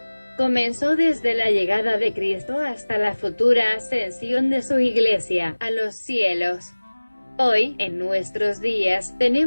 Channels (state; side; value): inverted; both; correlation -1.00